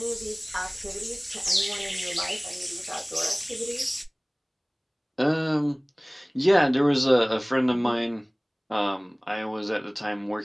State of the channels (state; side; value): identical; both; correlation 1.00